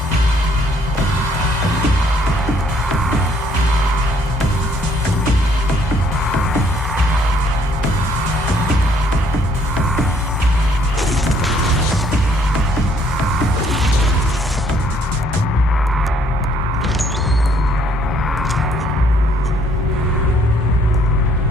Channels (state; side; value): normal; both; correlation 0.64